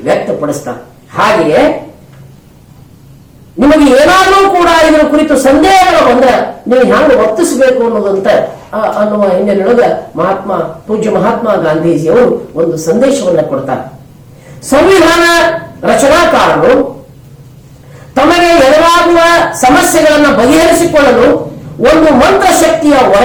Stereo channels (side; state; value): both; identical; correlation 1.00